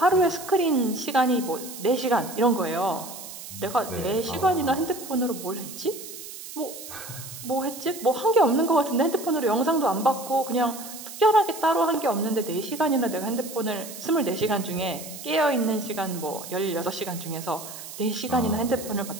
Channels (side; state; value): right; noise; hiss, 12 dB below the sound